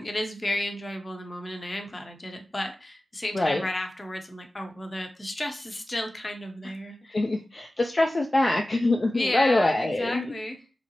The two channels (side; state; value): both; normal; correlation 0.96